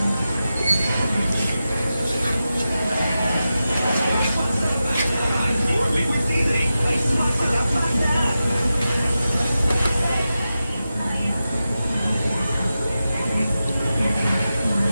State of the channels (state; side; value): inverted; both; correlation -0.92